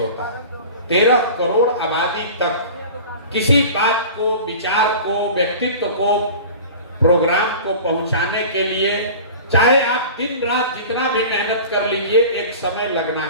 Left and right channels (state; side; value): inverted; both; correlation -0.37